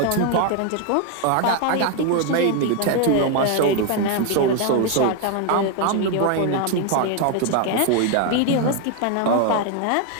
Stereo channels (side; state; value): both; different; correlation 0.01